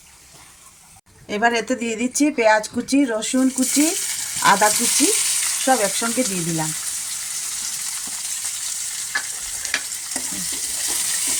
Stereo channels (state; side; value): identical; both; correlation 1.00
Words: এবার এতে দিয়ে দিচ্ছি পেঁয়াজ কুচি, রসুন কুচি, আদা কুচি সব একসঙ্গে দিয়ে দিলাম।